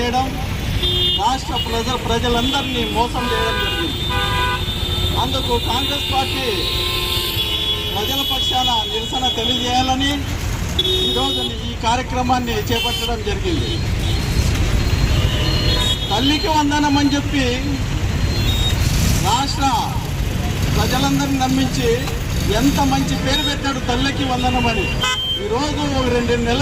రాష్ట్ర ప్రజలందరినీ మోసం చేయడం జరిగింది. అందుకు కాంగ్రెస్ పార్టీ ప్రజల పక్షాన నిరసన తెలియజేయాలని ఈరోజు ఈ కార్యక్రమాన్ని చేపట్టడం జరిగింది. తల్లికి వందనం అని చెప్పి రాష్ట్ర ప్రజలందరినీ నమ్మించి ఎంత మంచి పేరు పెట్టాడు తల్లికి వందనం అని. ఈరోజు 2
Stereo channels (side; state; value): both; identical; correlation 1.00